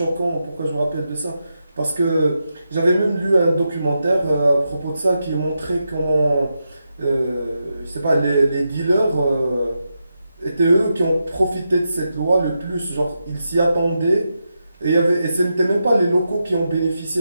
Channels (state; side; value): inverted; both; correlation -0.86